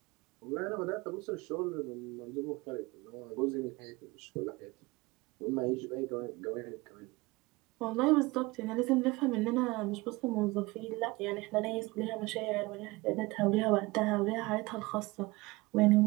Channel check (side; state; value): left; quieter; 22.3 dB